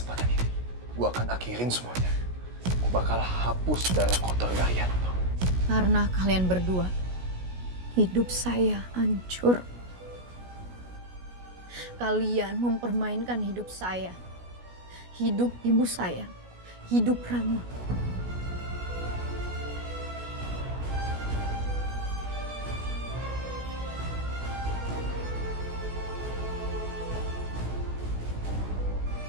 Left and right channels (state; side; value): late; left; 16 ms